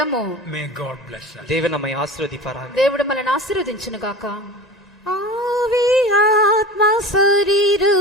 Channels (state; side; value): normal; both; correlation 0.34